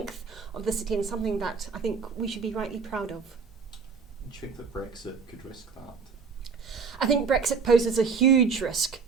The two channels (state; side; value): quieter; left; 5.4 dB